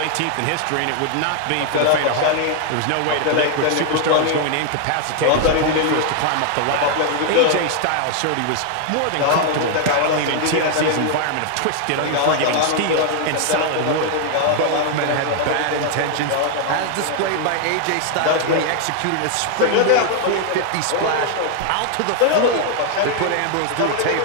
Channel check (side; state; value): both; different; correlation 0.00